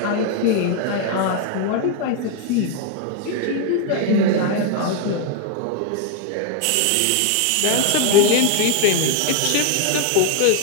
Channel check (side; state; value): both; different; correlation 0.01